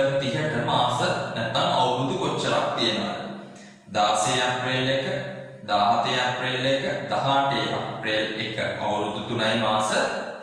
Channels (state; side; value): identical; both; correlation 1.00